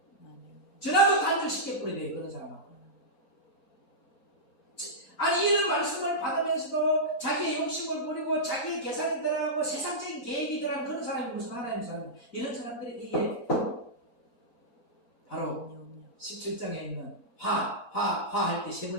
전화도 단절시켜 버려야 돼요, 그런 사람하고. 아니 이런 말씀을 받으면서도 자기의 욕심을 부리고 자기의 계산이 들어가고 세상적인 계획이 들어가는 그런 사람이 무슨 하나님 사람, 이런 사람들이 이게 바로 17장에 있는 화 할 때 세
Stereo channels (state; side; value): normal; both; correlation -0.12